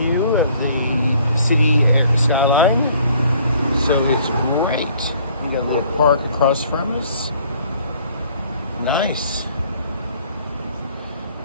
of the city and skyline. So it's great. We got a little park across from us. Nice.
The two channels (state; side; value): inverted; both; correlation -0.59